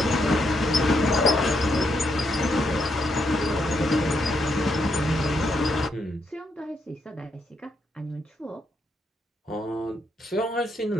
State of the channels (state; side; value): normal; both; correlation 0.78